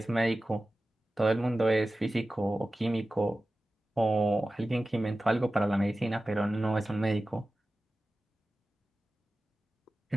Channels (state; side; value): normal; both; correlation 0.95